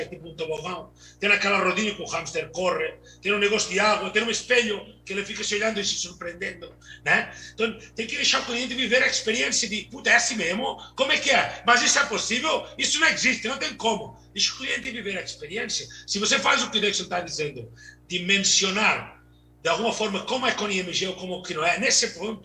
tipo um tobogão, tem aquela rodinha que o hamster corre, tem um negócio de água, tem um espelho que ele fica se olhando e se surpreendendo, né? Então tem que deixar o cliente viver a experiência de, puta, é assim mesmo? Como é que é? Mas isso é possível? Isso não existe, não tem como. Deixa o cliente viver a experiência. Se você faz o que o Dexon está dizendo, de mencionar de alguma forma como é com o IMG ou como que não é, nesse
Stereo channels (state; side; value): identical; both; correlation 1.00